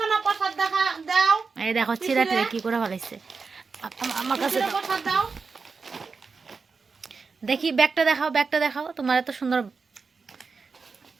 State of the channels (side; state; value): left; quieter; 4.8 dB